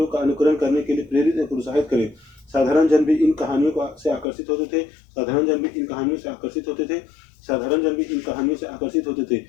का अनुकरण करने के लिए प्रेरित और प्रोत्साहित करें। साधारण जन भी इन कहानियों से आकर्षित होते थे। साधारण जन भी इन कहानियों से आकर्षित होते थे। साधारण जन भी इन कहानियों से आकर्षित होते थे।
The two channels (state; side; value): drops out; right; at 4.2 s